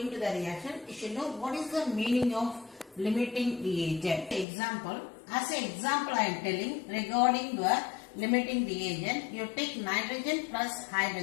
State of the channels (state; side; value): drops out; right; at 4.5 s